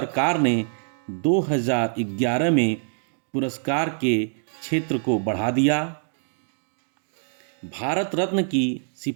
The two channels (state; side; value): silent; left; 62 dB below the other